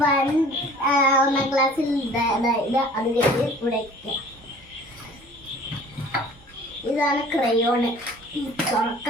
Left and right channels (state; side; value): normal; both; correlation 0.48